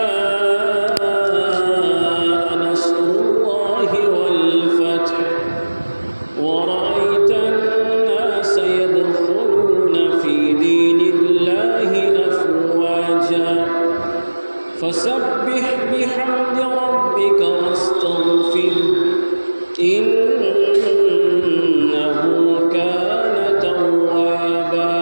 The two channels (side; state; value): both; inverted; correlation -1.00